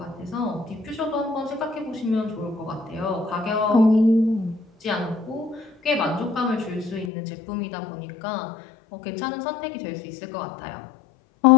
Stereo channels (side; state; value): right; drops out; at 7.1 s